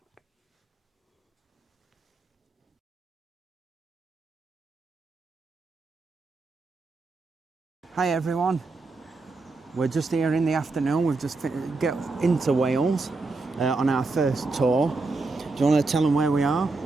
Hi everyone. We're just here in the afternoon. We've just get into Wales on our first tour. Do you want to tell them where we are?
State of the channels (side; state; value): left; quieter; 3.6 dB